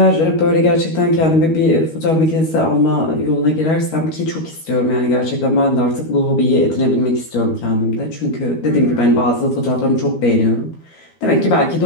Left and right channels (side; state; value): right; late; 12 ms